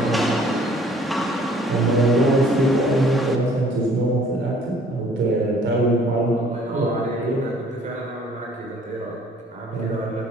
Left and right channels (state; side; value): normal; both; correlation 0.57